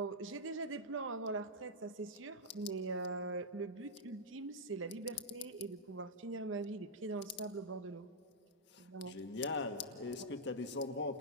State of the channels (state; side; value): normal; both; correlation -0.07